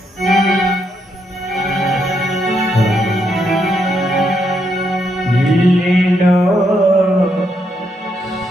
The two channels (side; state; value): both; normal; correlation 0.78